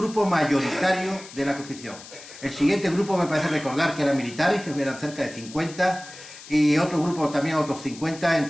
mayoritario de la Constitución. El siguiente grupo me parece recordar que eran militares, que eran cerca de 50, y otro grupo también, otros 50,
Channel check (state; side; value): noise; left; hiss, 17 dB below the sound